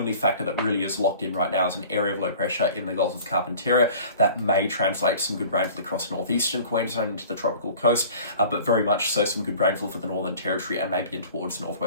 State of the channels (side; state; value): both; inverted; correlation -0.45